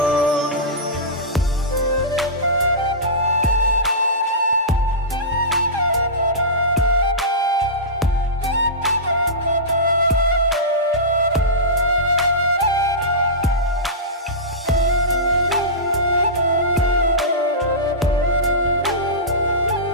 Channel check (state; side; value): normal; both; correlation -0.18